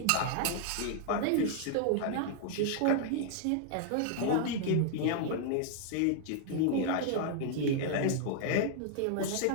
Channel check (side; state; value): both; different; correlation -0.01